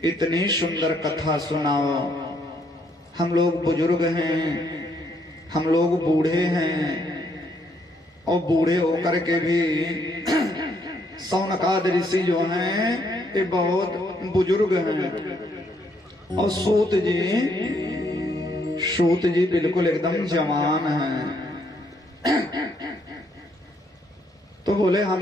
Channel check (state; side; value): normal; both; correlation 0.71